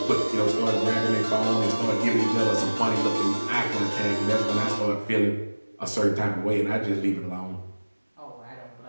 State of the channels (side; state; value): both; inverted; correlation -1.00